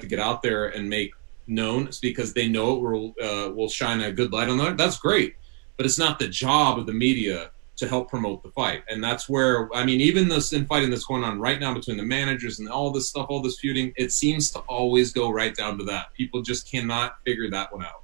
to get out there and make known. It's because they know it will shine a good light on that. That's great. But it's not the job of the media to help promote the fight. And that's where, I mean, even this infighting that's going on right now between the managers and all this stuff, all this feuding, it seems to always go right down to that. People just cannot figure that one out.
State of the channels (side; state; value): left; quieter; 39.8 dB